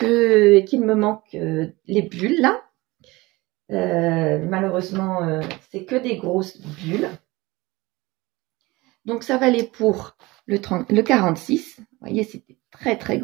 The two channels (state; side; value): quieter; left; 21.7 dB